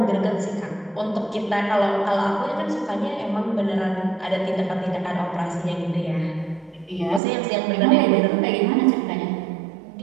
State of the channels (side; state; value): left; drops out; at 7.2 s